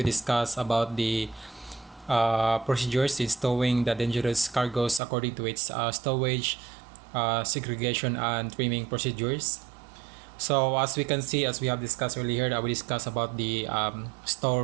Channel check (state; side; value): drops out; left; at 5.0 s